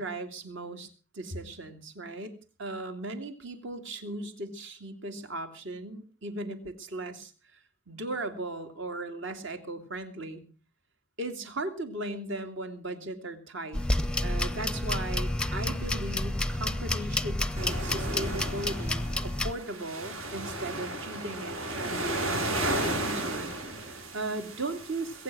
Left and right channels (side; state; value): both; normal; correlation 0.38